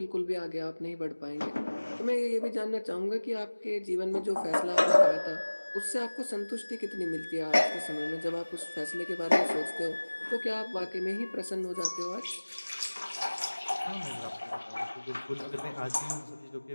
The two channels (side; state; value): both; inverted; correlation -1.00